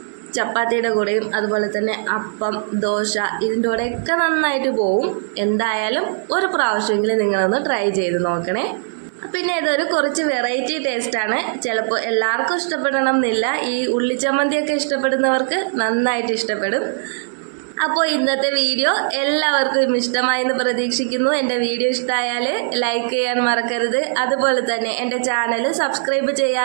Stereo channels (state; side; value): silent; left; digital silence